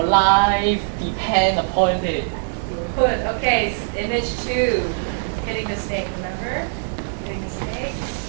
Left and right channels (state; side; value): silent; left; 64 dB below the other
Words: life depend upon it. Good. Okay. Image 2. Hitting the snake. Remember? Hitting the snake.